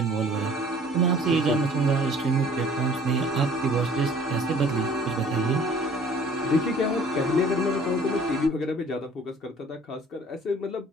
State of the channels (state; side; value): normal; both; correlation 0.52